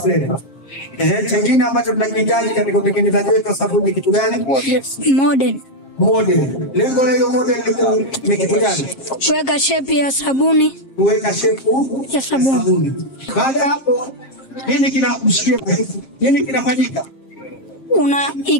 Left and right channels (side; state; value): right; late; 7.5 ms